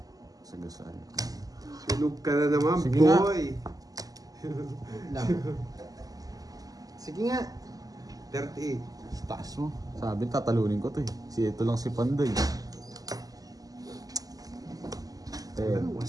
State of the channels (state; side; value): late; left; 0.17 ms